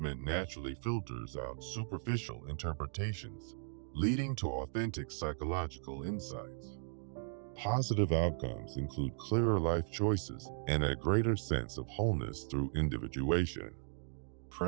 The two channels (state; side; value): silent; left; digital silence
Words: naturally filters out superficial interpretations, leading to authentic psychological insights. Positive outcomes include clearer life choices and a greater sense of wholeness through individuation.